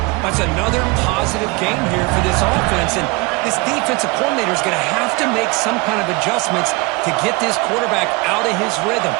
That's another positive game here for this offense, and this defensive coordinator is going to have to make some kind of adjustments to get this quarterback out of his rhythm.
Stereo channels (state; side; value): quieter; left; 25.7 dB